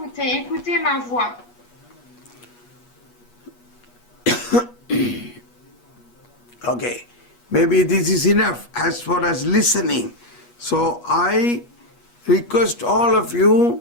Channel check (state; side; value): late; right; 8.3 ms